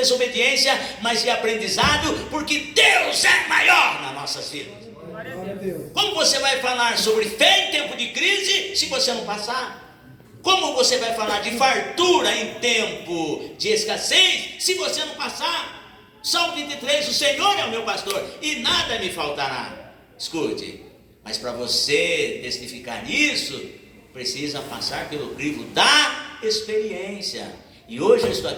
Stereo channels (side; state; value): both; identical; correlation 1.00